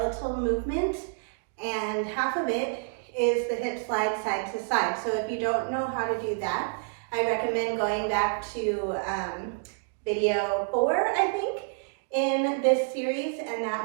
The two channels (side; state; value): left; silent; digital silence